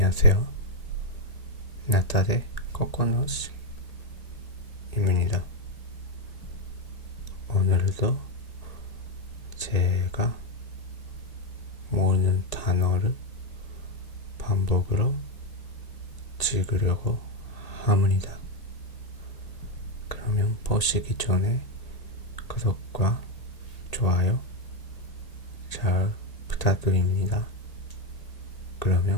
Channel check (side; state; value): right; late; 1.9 ms